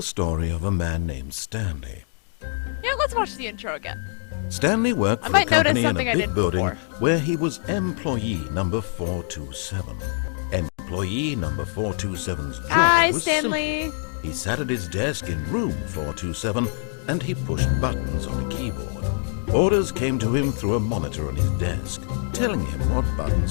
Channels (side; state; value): right; silent; 60 dB below the other